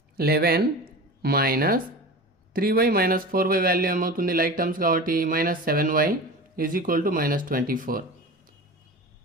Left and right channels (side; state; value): both; normal; correlation 0.32